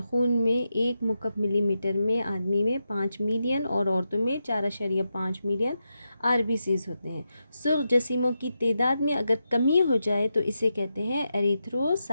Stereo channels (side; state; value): both; inverted; correlation -0.87